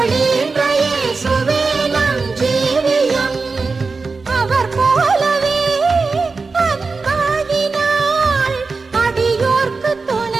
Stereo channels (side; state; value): left; quieter; 4.2 dB